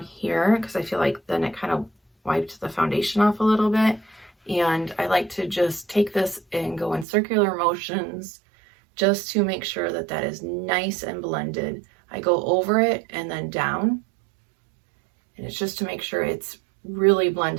here because I feel like then it kind of wiped the foundation off a little bit. And I like to just take this and go in circular motions just to make sure that that is nice and blended. I go over it and then down, and it's just to make sure it's really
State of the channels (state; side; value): drops out; left; at 7.1 s